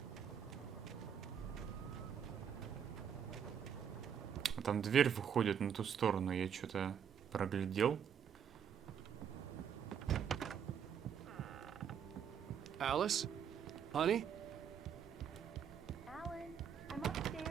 там дверь выходит на ту сторону, я что-то проглядел. Alice? Honey? Alan, I'm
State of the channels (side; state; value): left; quieter; 8.0 dB